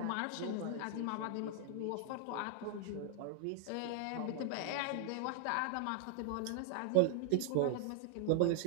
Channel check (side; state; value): both; different; correlation 0.00